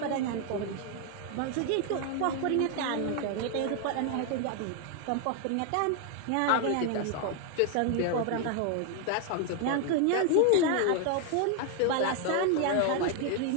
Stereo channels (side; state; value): both; different; correlation 0.01